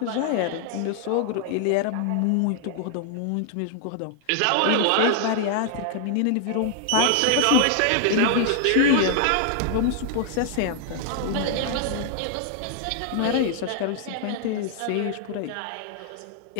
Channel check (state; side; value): different; both; correlation 0.00